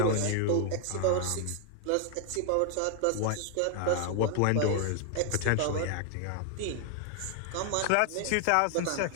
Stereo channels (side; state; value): both; different; correlation 0.00